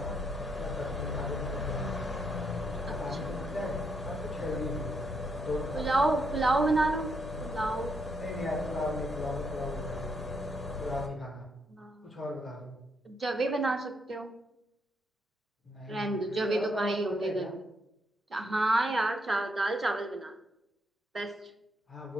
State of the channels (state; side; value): normal; both; correlation 0.77